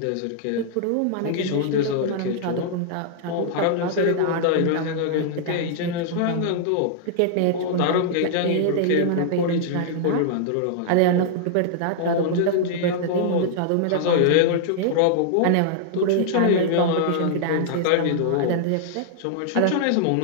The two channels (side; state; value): both; different; correlation -0.01